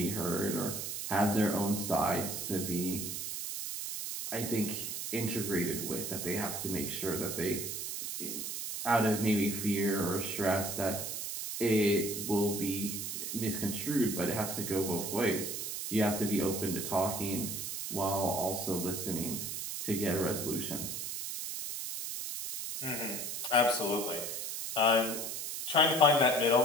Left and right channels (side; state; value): right; noise; hiss, 5 dB below the sound